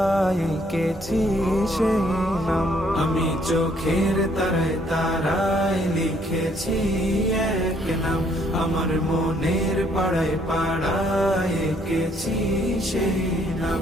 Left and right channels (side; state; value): both; normal; correlation 0.66